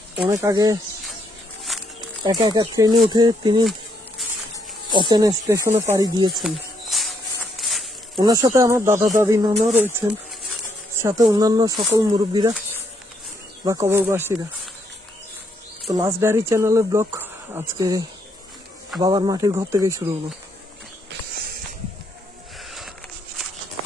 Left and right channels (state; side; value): normal; both; correlation 0.75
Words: অনেক আগে একা একা ট্রেনে উঠে তিনি অচেনা স্টেশনে পাড়ি দিয়েছেন। ওনার সাথে আমার দাদা দাদি নানাও রয়েছেন, সাথে অন্যান্য সকল মুরব্বীরা বা কবরবাসীরা। তো লাস্ট ডায়েরি চ্যানেলের ব্লগ আজকে বাবার মাটির ঘর থেকেই শুরু হলো।